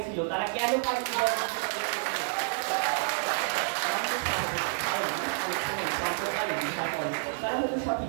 ছিল, তারা কেন পারেনি? তারা হয়তো সঠিক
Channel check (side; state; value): left; silent; digital silence